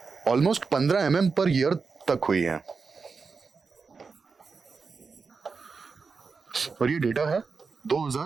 ऑलमोस्ट 15 mm पर ईयर तक हुई है। और ये डेटा है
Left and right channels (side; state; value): left; quieter; 4.9 dB